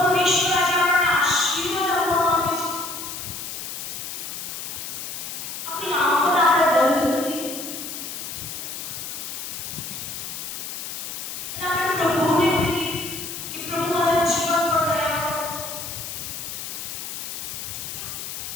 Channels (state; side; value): noise; left; hiss, 7 dB below the sound